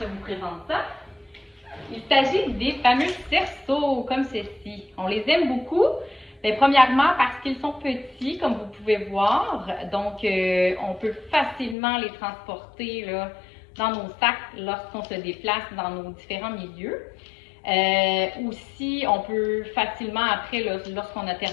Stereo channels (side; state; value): right; drops out; at 11.8 s